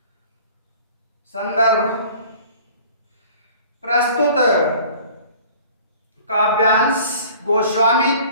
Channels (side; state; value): both; inverted; correlation -0.48